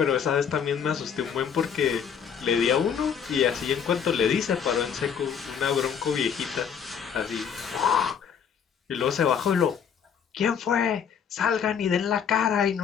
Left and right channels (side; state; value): right; quieter; 7.5 dB